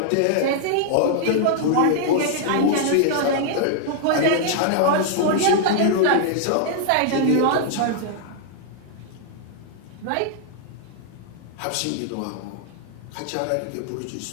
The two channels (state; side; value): different; both; correlation -0.01